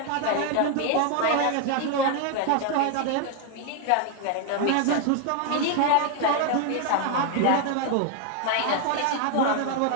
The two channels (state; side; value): different; both; correlation 0.00